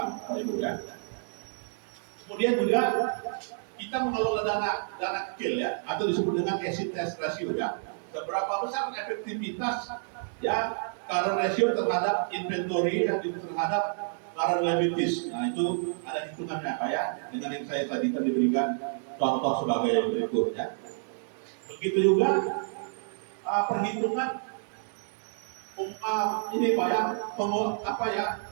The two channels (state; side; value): silent; left; 58 dB below the other